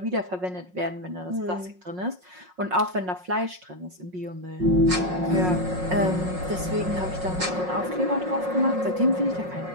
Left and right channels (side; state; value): left; late; 5.5 ms